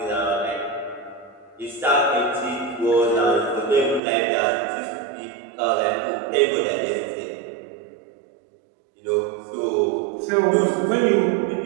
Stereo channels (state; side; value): drops out; left; at 4.0 s